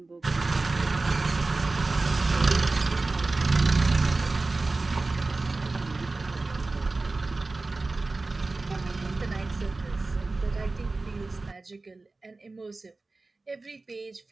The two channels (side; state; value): left; quieter; 3.4 dB